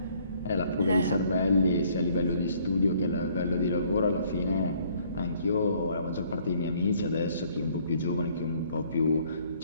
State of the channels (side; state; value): both; inverted; correlation -0.62